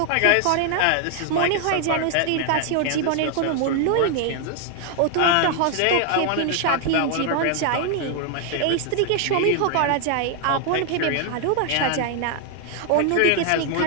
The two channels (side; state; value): both; different; correlation 0.00